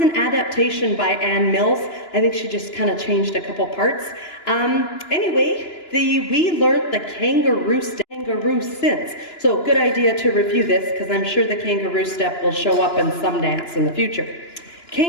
an adaptation by Ann Mills. I think she just kind of changed a couple parts. Anyway, we learned the kangaroo since. So good idea to review this, because I'm sure the kangaroo step will show up in some dance in the future.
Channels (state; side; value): late; right; 2.9 ms